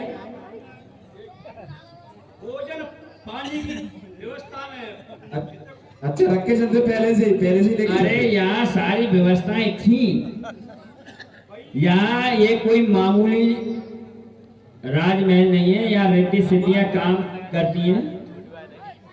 भोजन पानी की व्यवस्था में। अच्छा रख के चलते पहले से लेके। अरे यहाँ सारी व्यवस्थाएं थी। यहाँ ये कोई मामूली राजमहल नहीं है, यहाँ रेड्डी सिटियां काम करती हैं।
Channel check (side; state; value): both; identical; correlation 1.00